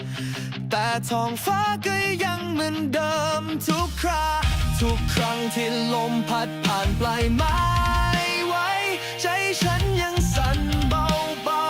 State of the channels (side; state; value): both; identical; correlation 1.00